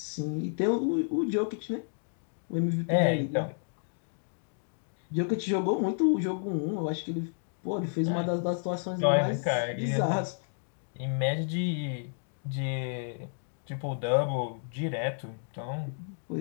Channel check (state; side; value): silent; right; digital silence